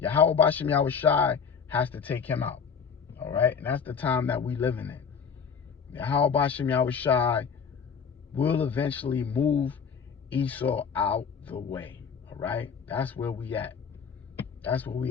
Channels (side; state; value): right; quieter; 6.4 dB